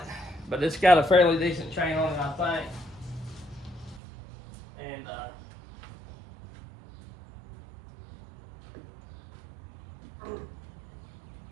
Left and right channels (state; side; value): drops out; left; at 4.0 s